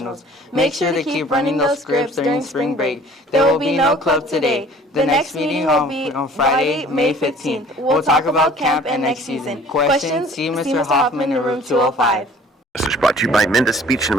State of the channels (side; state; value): both; normal; correlation 0.51